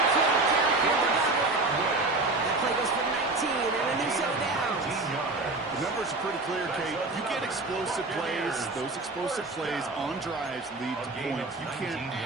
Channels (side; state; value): left; quieter; 3.2 dB